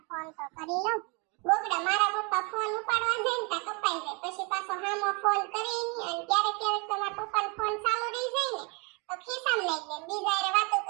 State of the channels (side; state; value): left; quieter; 31.8 dB